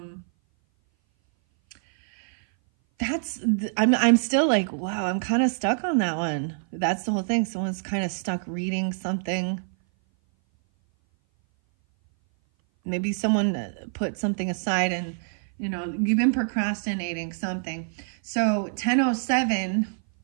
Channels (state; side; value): silent; left; 58 dB below the other